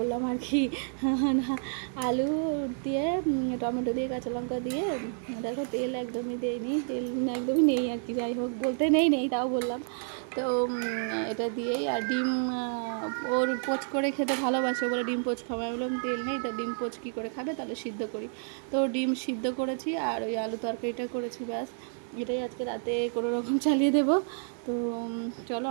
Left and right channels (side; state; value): left; silent; 56 dB below the other